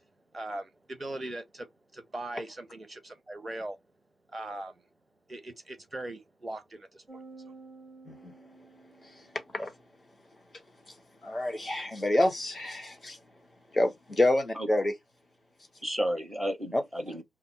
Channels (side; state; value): both; normal; correlation 0.94